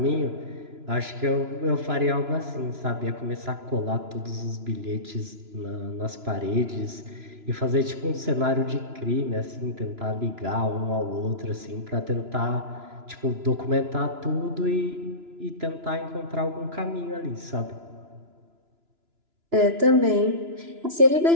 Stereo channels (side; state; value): left; late; 2.9 ms